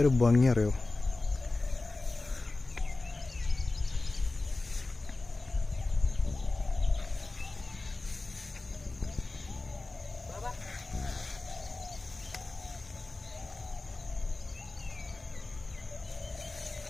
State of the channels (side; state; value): right; quieter; 3.2 dB